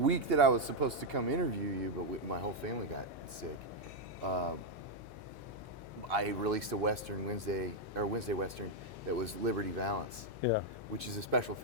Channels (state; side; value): noise; left; hum, 18 dB below the sound